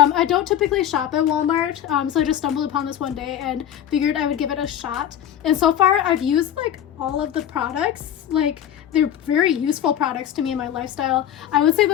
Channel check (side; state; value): right; quieter; 10.5 dB